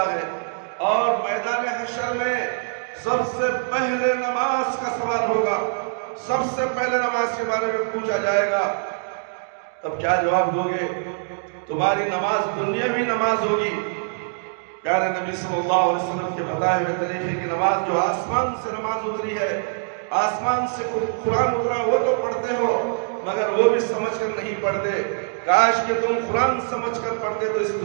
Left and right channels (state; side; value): silent; left; digital silence